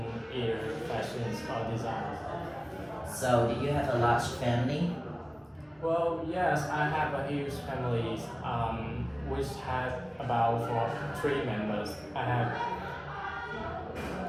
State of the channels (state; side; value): identical; both; correlation 1.00